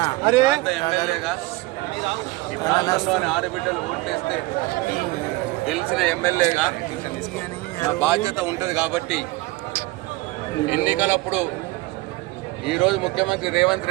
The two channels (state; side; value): quieter; left; 20.8 dB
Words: ఎమ్మెల్యేగా ఈ ప్రాంతంలోని ఆడబిడ్డలు ఓట్లేస్తే గెలిచిన ఎమ్మెల్యేగా నా బాధ్యత ఉంటుంది కాబట్టి ఎన్నికలప్పుడు ఈరోజు ముఖ్యమంత్రి